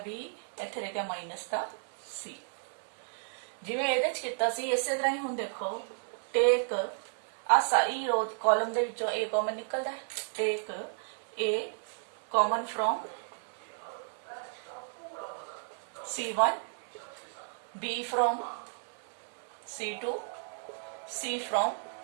ਇੱਥੇ ਰਹਿ ਗਿਆ ਮਾਈਨਸ ਦਾ c। ਜਿਵੇਂ ਇਹਦੇ ਚ ਕੀਤਾ ਸੀ ਇਸੇ ਤਰ੍ਹਾਂ ਹੀ ਹੁਣ ਦੇਖੋ ਟੇਕ ਆ ਸਾਰੀ ਰੋ ਕਾਲਮ ਦੇ ਵਿੱਚੋਂ a ਕਾਮਨ ਨਿਕਲਦਾ ਹੈ, ਟੇਕ a common from c1, b from c2, c from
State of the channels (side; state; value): left; silent; digital silence